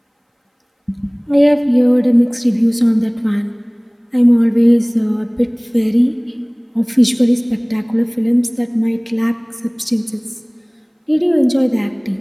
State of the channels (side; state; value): both; identical; correlation 1.00